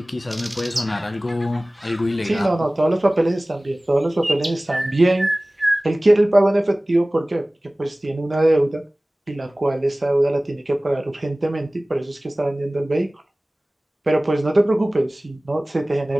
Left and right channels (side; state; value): both; normal; correlation 0.98